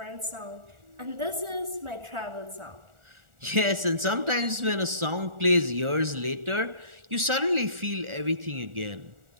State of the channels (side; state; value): left; late; 1.4 ms